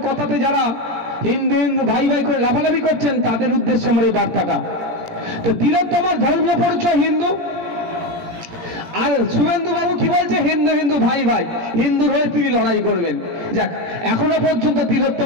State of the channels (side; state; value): left; late; 18 ms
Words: কথাতে যারা হিন্দু হিন্দু ভাই ভাই করে লাফালাফি করছেন তাদের উদ্দেশ্যে আমার এই বার্তাটা। তো তিলোত্তমার ধর্মীয় পরিচয় হিন্দু, আর শুভেন্দু বাবু কি বলছে? হিন্দু হিন্দু ভাই ভাই, হিন্দুর হয়ে তিনি লড়াই করবেন। যাক, এখনো পর্যন্ত